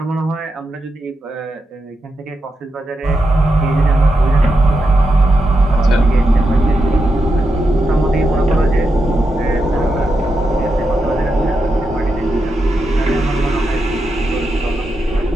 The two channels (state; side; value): normal; both; correlation 0.86